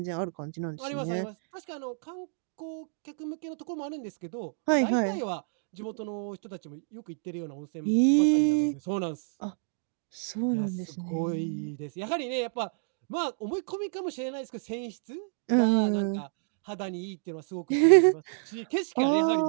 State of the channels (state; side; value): silent; left; digital silence